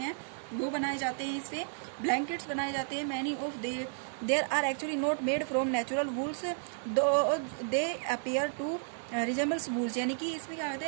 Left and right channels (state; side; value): silent; left; digital silence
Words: वो बनाए जाते हैं, इससे ब्लैंकेट्स बनाए जाते हैं। Many of their are actually not made from natural wools they appear to resembles wools, यानी कि इसमें क्या कहते